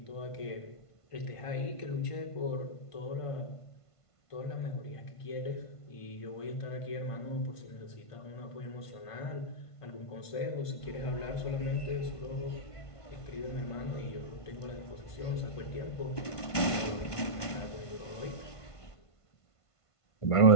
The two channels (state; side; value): late; right; 1.5 ms